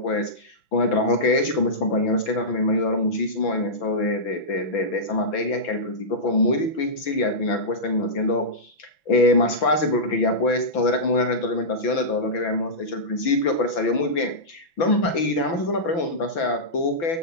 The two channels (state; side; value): late; right; 6.0 ms